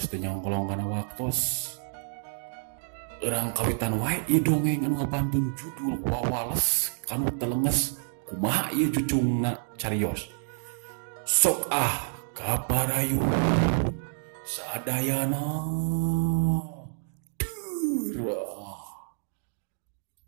teu nyongkolong kana waktos. Urang kawitan wae ieu dongeng anu ngabantun judul Wawales kanu telenges. Kumaha ieu cucungna carios. Sok kabarayun sadayana. Durah.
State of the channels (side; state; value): left; silent; digital silence